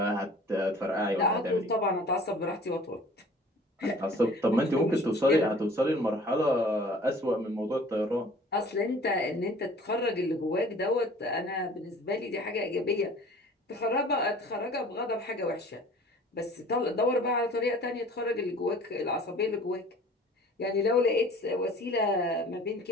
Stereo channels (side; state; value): both; normal; correlation 0.48